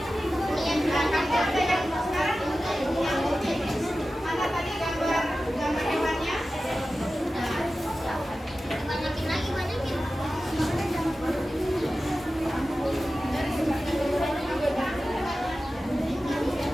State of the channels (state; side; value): normal; both; correlation 0.94